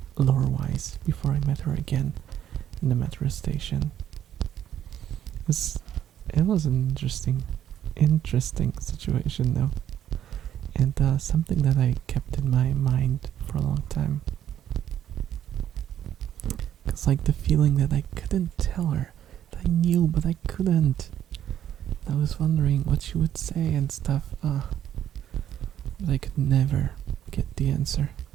lore-wise, before I met her again in the metro station. It was an interesting situation though, and something that I kept in my mind for a long time. Cause the feeling that I couldn't tell her, that I knew but I couldn't. I was wondering what she would say and stuff, but I could never get the answer.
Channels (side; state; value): left; quieter; 10.6 dB